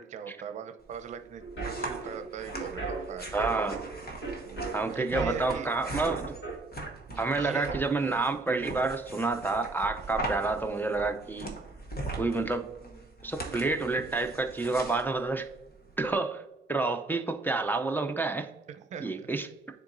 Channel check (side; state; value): left; quieter; 3.0 dB